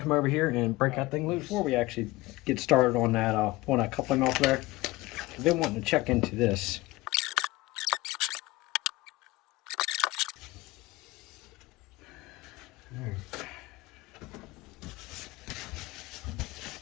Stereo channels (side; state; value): right; quieter; 19.9 dB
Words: come over here and break that thing loose. Before we actually get started on that, pulling that coupling off there, I've been wanting to check into this.